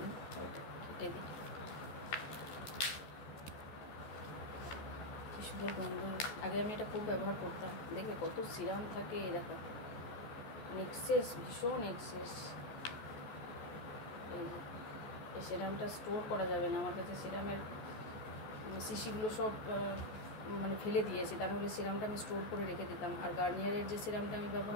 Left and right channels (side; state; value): right; late; 14 ms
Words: না। ওইটা কেটে দিই। কি সুন্দর গন্ধ। আগে আমি এটা খুব ব্যবহার করতাম, দেখবে কত সিরাম থাকে, এই দেখো এক্সেস, ভীষণ এক্সেস। এই সিরামটা স্টোর করা যাবে না, আমার কাছে সিরামের শিশিগুলো সব মানে ফেলে দিয়েছি, তার হলে সিরামটা আমি স্টোর করে রেখে দিতাম। আর গার্নিয়ারের যে সিরামটা আমি